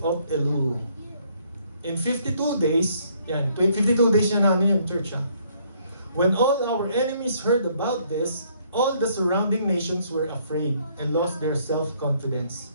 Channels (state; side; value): inverted; both; correlation -0.66